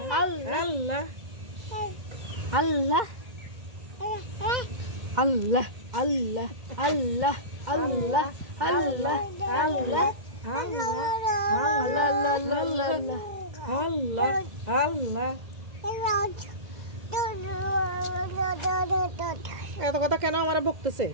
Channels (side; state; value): left; late; 2.0 ms